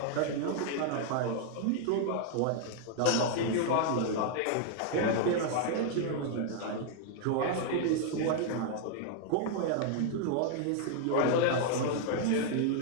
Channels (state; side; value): different; both; correlation 0.00